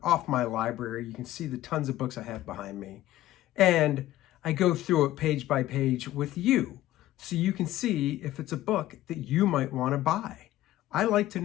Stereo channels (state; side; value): quieter; right; 14.8 dB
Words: off my library. You can see the tons of books I have behind me. And I go through it page by page with you so you can see if it's a book that you might want to buy. I like to